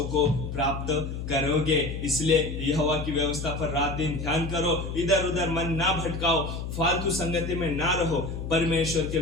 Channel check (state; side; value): noise; left; hum, 6 dB below the sound